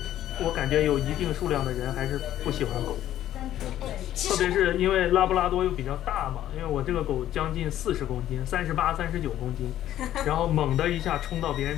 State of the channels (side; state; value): right; quieter; 12.4 dB